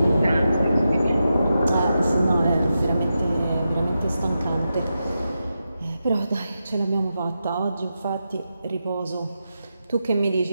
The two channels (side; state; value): both; inverted; correlation -0.88